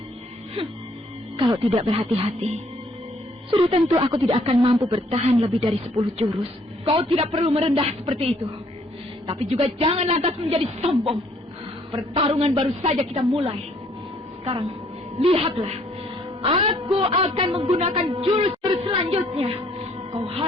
Kalau tidak berhati-hati, sudah tentu aku tidak akan mampu bertahan lebih dari 10 jurus. Kau tidak perlu merendah seperti itu. Tapi juga jangan lantas menjadi sombong. Pertarungan baru saja kita mulai. Sekarang, lihatlah. Aku akan menggunakan jurus-jurus selanjutnya. Kau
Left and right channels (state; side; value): normal; both; correlation 0.64